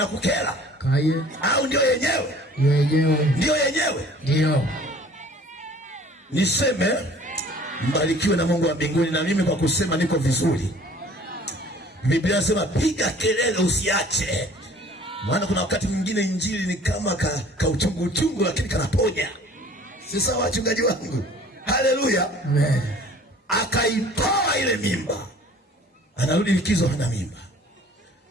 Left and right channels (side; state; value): both; normal; correlation 0.50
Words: Kaye. Au ndio yenyewe? Ndio yenyewe. Ndio. Niseme mbarikiwe na Mungu wa mbinguni, na mimi kwa kusema niko vizuri. Biblia inasema piga kelele usiache. Maana kuna wakati mwingine injili ni kama ka uchungu lakini kanaponya. Si sawa wachungaji wangu? Haleluya. Amen. Akaitoa ile mimba. Anarudi likizo hana mimba.